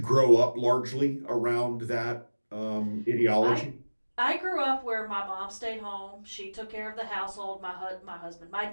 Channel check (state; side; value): inverted; both; correlation -1.00